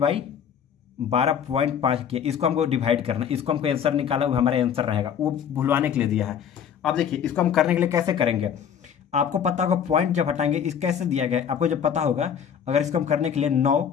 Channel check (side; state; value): right; quieter; 8.2 dB